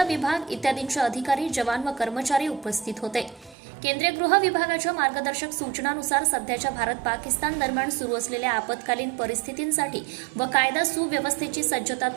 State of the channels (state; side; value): drops out; left; at 3.6 s